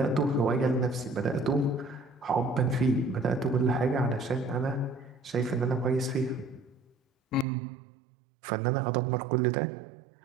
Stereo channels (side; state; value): left; drops out; at 7.5 s